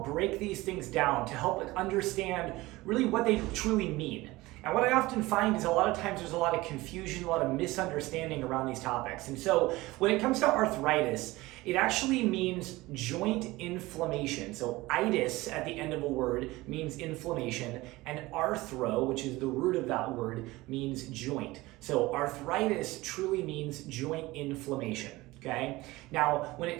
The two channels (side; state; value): left; quieter; 19.9 dB